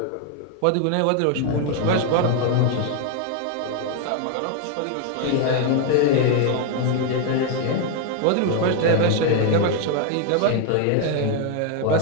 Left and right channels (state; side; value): different; both; correlation 0.01